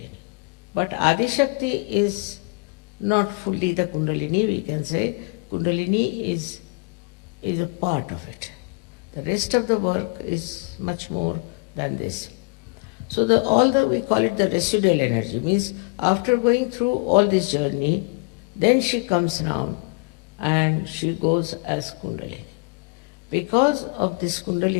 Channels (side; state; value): right; quieter; 31.0 dB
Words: But Adi Shakti is not fully the Kundalini, we can say. Kundalini is a part of it. The rest of the work is much more than this. So we call it the residual energy, means after going through all this journey, then she comes down and she goes as Kundalini. Because of this